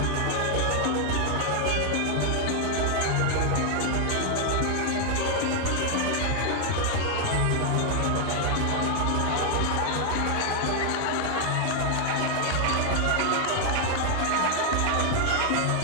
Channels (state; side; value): different; both; correlation 0.00